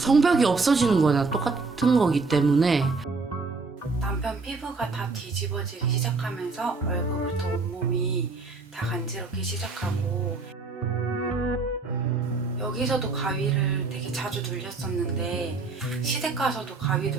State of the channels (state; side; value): quieter; left; 4.0 dB